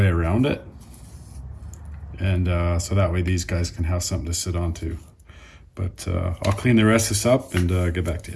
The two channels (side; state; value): both; identical; correlation 1.00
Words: around it. And so that way these guys can have something to sit onto. But I'll clean the rest of this up and get back to